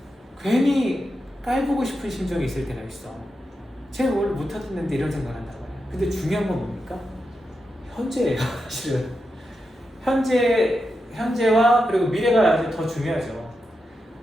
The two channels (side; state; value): both; normal; correlation 0.88